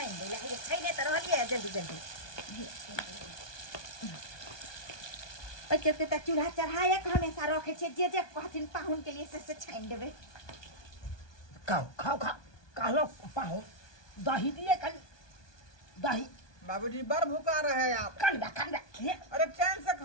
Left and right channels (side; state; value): right; late; 1.2 ms